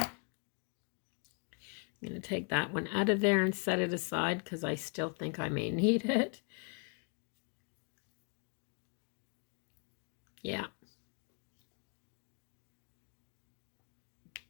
going to take that one out of there and set it aside because I still think I may need it. Yeah.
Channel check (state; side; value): quieter; right; 36.9 dB